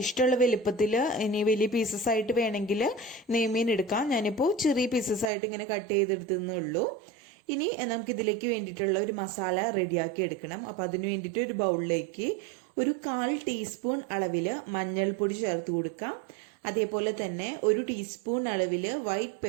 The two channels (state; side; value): drops out; left; at 5.3 s